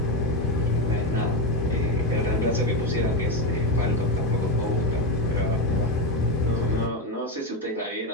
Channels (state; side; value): normal; both; correlation 0.12